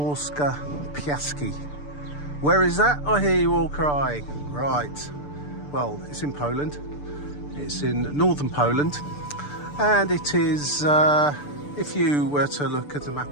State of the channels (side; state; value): right; late; 6.8 ms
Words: Piaski. Where is that? I hear you all crying. Right, well, it's in Poland. It's in northern Poland, and it is, if you were to look at a